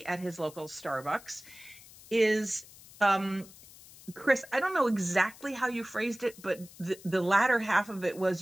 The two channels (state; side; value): noise; left; hiss, 20 dB below the sound